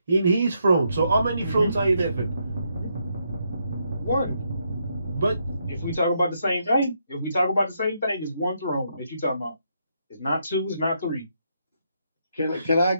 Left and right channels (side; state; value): both; inverted; correlation -0.77